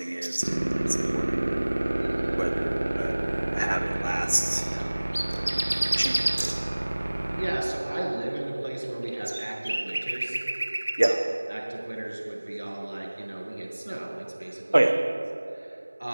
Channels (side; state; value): both; inverted; correlation -1.00